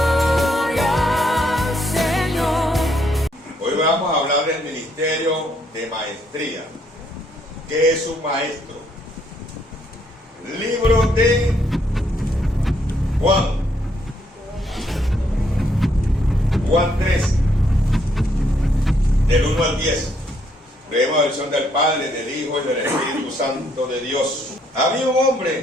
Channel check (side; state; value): both; normal; correlation 0.71